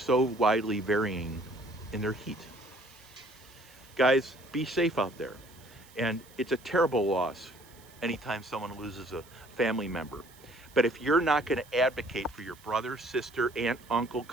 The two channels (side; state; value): right; noise; hiss, 24 dB below the sound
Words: widely varying in their heat. Guys, be safe out there. And it's a terrible loss anytime someone loses a family member. But if you're not going to advocate for your brother, sister, aunt, uncle,